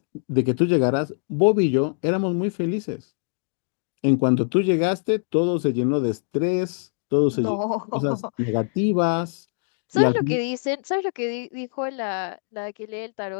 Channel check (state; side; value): silent; right; digital silence